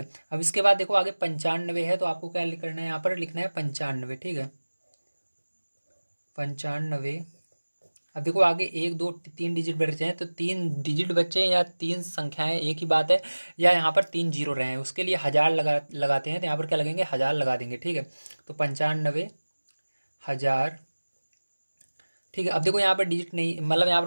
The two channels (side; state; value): both; inverted; correlation -1.00